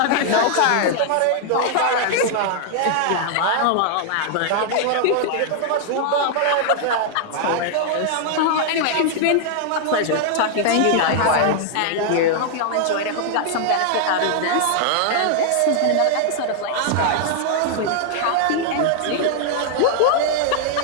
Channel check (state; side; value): different; both; correlation -0.01